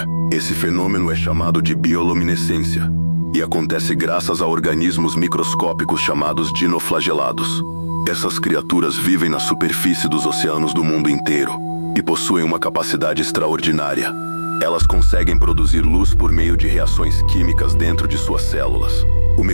Esse fenômeno é chamado de bioluminescência e acontece graças a organismos microscópicos chamados dinoflagelados. Essas criaturas vivem na superfície dos oceanos do mundo inteiro e possuem uma capacidade extraordinária. Elas conseguem produzir luz por meio de reações químicas dentro de suas células. O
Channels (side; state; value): both; inverted; correlation -1.00